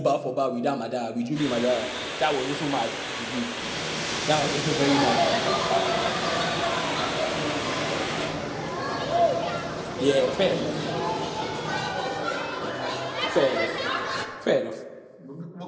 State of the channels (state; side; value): identical; both; correlation 1.00